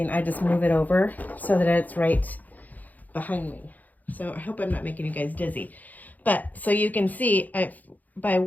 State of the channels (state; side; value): late; right; 0.081 ms